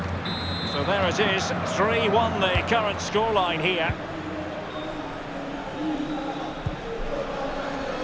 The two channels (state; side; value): identical; both; correlation 1.00